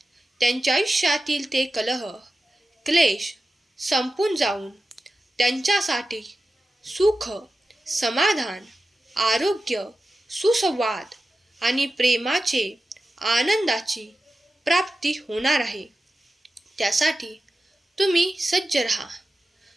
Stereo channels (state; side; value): normal; both; correlation 0.93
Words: त्यांच्या आयुष्यातील ते कलह, क्लेश संपून जाऊन त्यांच्यासाठी सुख, समाधान, आरोग्य, सुसंवाद आणि प्रेमाचे, आनंदाची प्राप्ती होणार आहे. त्यासाठी तुम्ही सज्ज राहा.